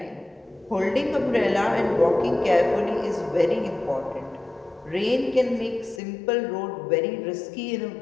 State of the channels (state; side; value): drops out; right; at 6.0 s